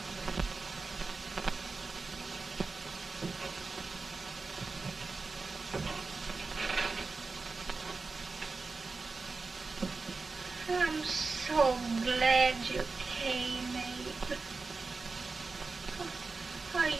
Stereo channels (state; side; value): quieter; left; 4.1 dB